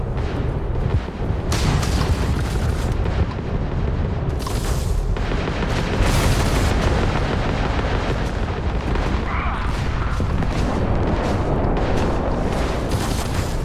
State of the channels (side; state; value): both; identical; correlation 1.00